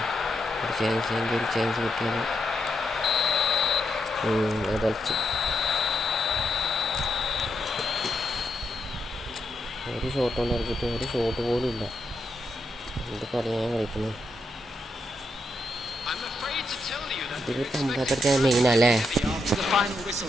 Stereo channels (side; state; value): both; normal; correlation 0.82